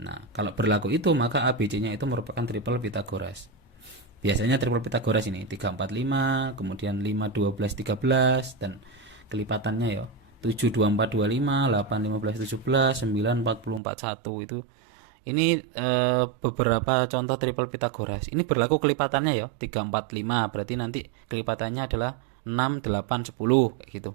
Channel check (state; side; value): drops out; left; at 13.8 s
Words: kalau berlaku itu maka A, B, C-nya itu merupakan triple Pitagoras. Biasanya triple Pitagoras ini 3, 4, 5, kemudian 5, 12, 13 dan kelipatannya ya 7, 2, 4, 25, 8, 15, 17, 9, 40, 41 itu Ini beberapa contoh triple Pitagoras. Ini berlaku kelipatannya ya, 3, 4, 5. Berarti nanti kelipatannya adalah 6, 8, 10 kayak gitu.